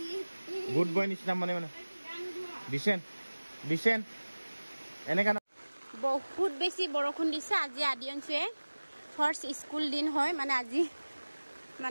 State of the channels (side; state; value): both; inverted; correlation -1.00